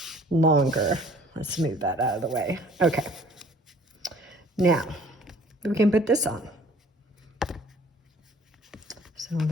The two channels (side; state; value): both; normal; correlation 0.54